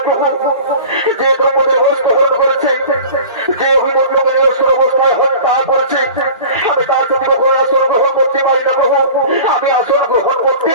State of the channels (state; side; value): inverted; both; correlation -0.40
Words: প্রভু। যে দ্রৌপদীর বস্ত্র হরণ করেছে, যে অভিমন্যকে নিরস্ত্র অবস্থায় হত্যা করেছে, আমি তার প্রতি কখনো আসন গ্রহণ করতে পারি না প্রভু। আমি আসন গ্রহণ করতে